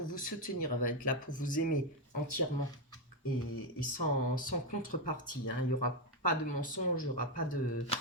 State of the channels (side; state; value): both; normal; correlation 0.06